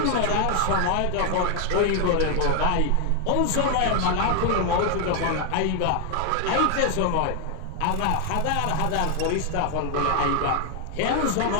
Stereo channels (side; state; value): both; different; correlation 0.01